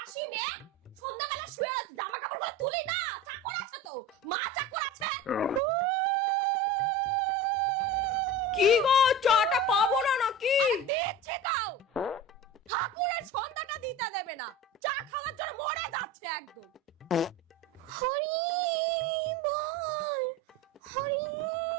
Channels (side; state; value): both; normal; correlation 0.32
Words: মেয়ে সন্ধ্যাবেলা শুয়ে আছে, জামা কাপড়গুলো তুলি না, চাকর আছে তো, মা চাকর আছে। কি গো, চাটা পাবো না নাকি? দিচ্ছি দাও। ঠাকুরের সন্ধ্যাটা দিতে দেবে না, চা খাওয়ার জন্য মরে যাচ্ছে একদম। হরি বল হরি।